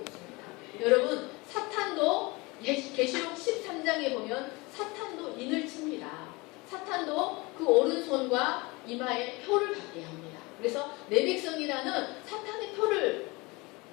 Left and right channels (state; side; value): quieter; right; 24.8 dB